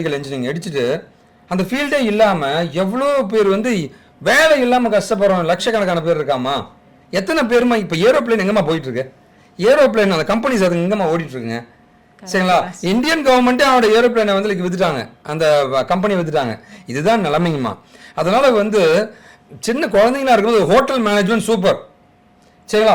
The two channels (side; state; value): both; identical; correlation 1.00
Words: இன்ஜினியரிங் அடிச்சுட்டு அந்த ஃபீல்டே இல்லாமல் எவ்வளோ பேர் வந்து வேலை இல்லாமல் கஷ்டப்படுறோம், லட்சக்கணக்கான பேர் இருக்காமா. எத்தனை பேருமா இப்போ ஏரோப்ளேன் எங்கம்மா போயிட்டு இருக்கு, ஏரோப்ளேன் அந்த கம்பெனிஸ் அது எங்கம்மா ஓடிட்டு இருக்குங்க. சரிங்களா, இந்தியன் கவர்மெண்ட்டே அவனோட ஏரோப்ளேனை வந்து வித்துட்டாங்க, அந்த கம்பெனி வித்துட்டாங்க. இதுதான் நிலைமைங்கம்மா. அதனால வந்து சின்ன குழந்தைங்களா இருக்கும்போது ஹோட்டல் மேனேஜ்மெண்ட் சூப்பர்,